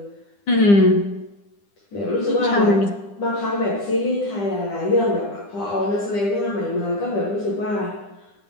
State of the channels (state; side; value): late; right; 9.9 ms